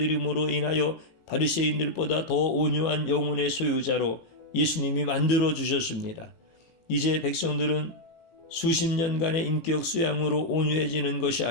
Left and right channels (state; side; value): late; right; 18 ms